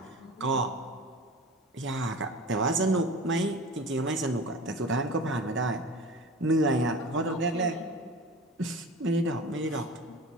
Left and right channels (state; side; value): normal; both; correlation 0.35